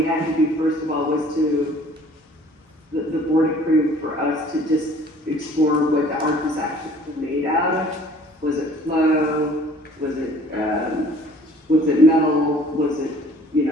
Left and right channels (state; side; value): normal; both; correlation 0.53